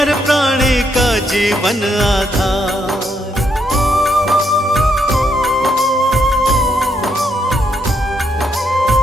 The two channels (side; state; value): both; normal; correlation 0.76